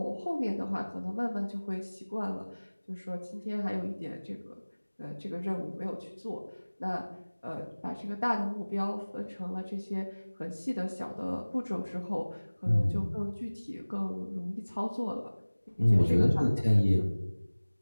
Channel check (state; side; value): inverted; both; correlation -1.00